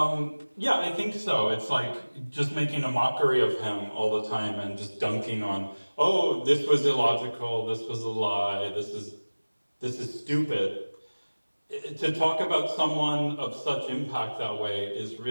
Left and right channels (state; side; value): inverted; both; correlation -1.00